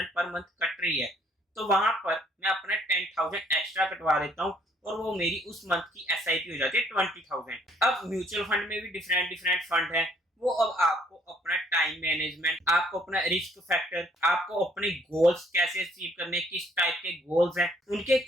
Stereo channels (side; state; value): both; normal; correlation 0.63